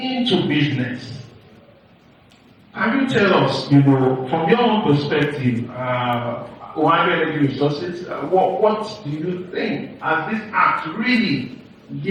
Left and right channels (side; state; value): both; identical; correlation 1.00